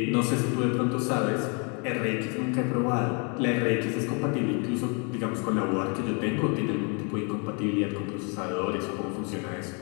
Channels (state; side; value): quieter; right; 35.5 dB